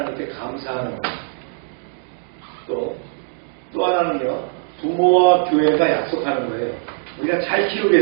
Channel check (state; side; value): silent; left; digital silence